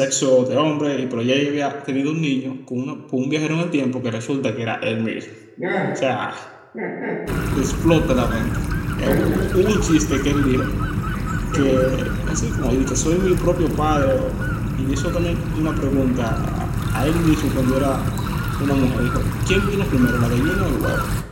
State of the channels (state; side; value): identical; both; correlation 1.00